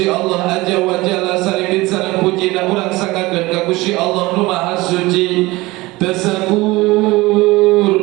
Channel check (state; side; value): quieter; left; 20.8 dB